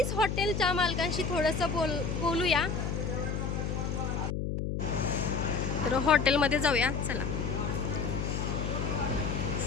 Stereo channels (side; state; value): left; noise; hum, 2 dB below the sound